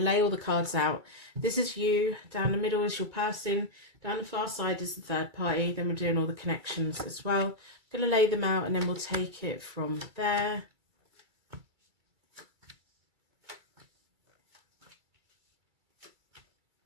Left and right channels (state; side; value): late; left; 2.3 ms